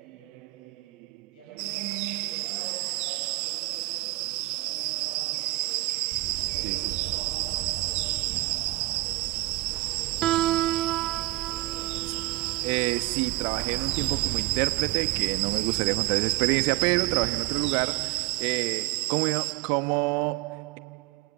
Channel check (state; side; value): quieter; left; 20.8 dB